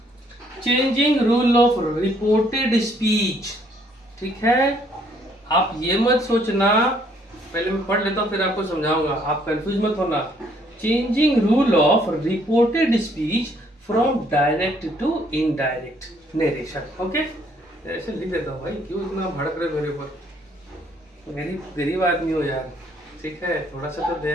Changing rule of reported speech. ठीक है, आप ये मत सोचना, पहले मैं पढ़ लेता हूँ फिर आपको समझाऊंगा, आप कंफ्यूज मत होना। Changing rule of reported speech from direct to indirect narration. Okay, ऐसे लिख देता हूँ भाई, क्यों इतना भड़क रहे मेरे ऊपर, मेरी गरीब आदमी हो यार। ठीक है, थोड़ा सा तो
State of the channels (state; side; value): normal; both; correlation 0.65